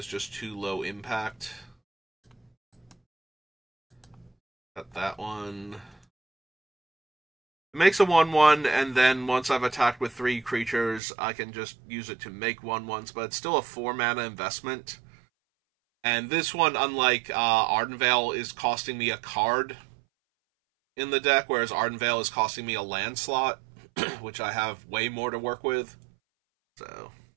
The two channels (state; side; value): drops out; left; at 11.0 s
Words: just too low impact. Got that one. It makes a 1/1, and then once I've attacked with 3 creatures, I can just use it to make 1/1s, but it's still a 4 mana investment. And this one, unlike Ardenvale, is costing me a card in the deck, whereas Ardenvale is costing me a land slot, which I have way more to work with. So